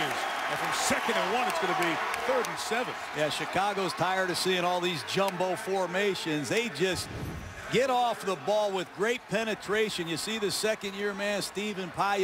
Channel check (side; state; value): both; identical; correlation 1.00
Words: And from 2nd and 1, it's going to be 3rd and 7. Yeah, Chicago's tired of seeing all these jumbo formations. They just get off the ball with great penetration. You see the second-year man, Stephen